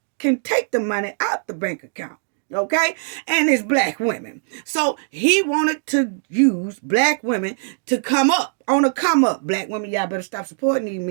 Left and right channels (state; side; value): silent; left; digital silence